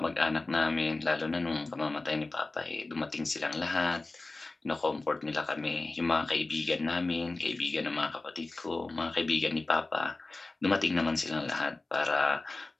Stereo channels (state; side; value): quieter; right; 3.2 dB